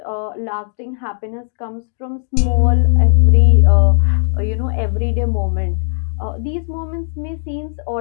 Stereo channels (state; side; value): silent; right; digital silence